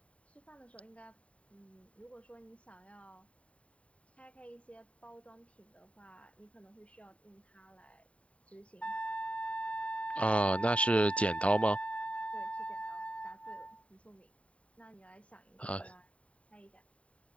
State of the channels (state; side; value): late; right; 0.064 ms